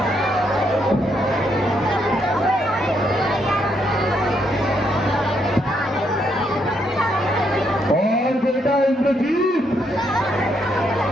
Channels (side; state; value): both; normal; correlation 0.75